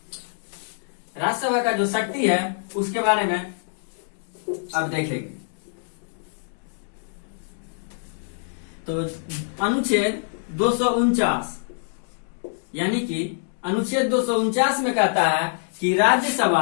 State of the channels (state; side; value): silent; right; digital silence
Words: राज्यसभा का जो शक्ति है उसके बारे में अब देखेंगे। तो अनुच्छेद 249 यानी कि अनुच्छेद 249 में कहता है कि